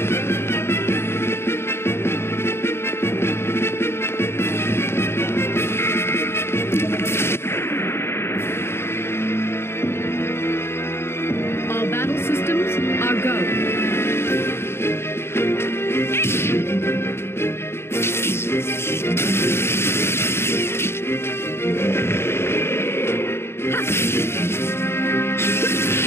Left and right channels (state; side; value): late; right; 0.12 ms